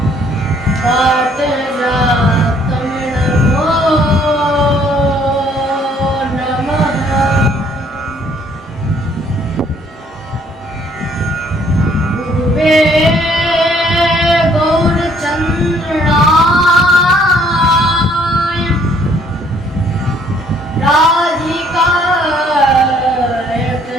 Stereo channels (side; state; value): both; normal; correlation 0.63